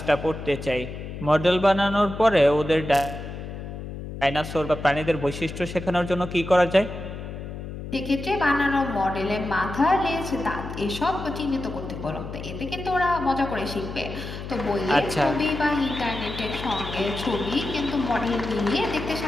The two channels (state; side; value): noise; left; hum, 9 dB below the sound